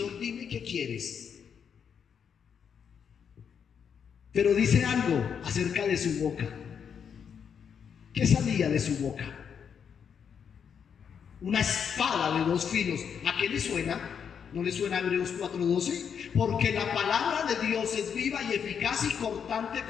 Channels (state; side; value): quieter; right; 7.3 dB